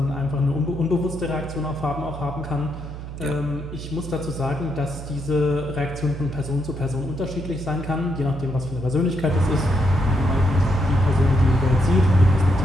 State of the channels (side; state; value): right; noise; hum, 10 dB below the sound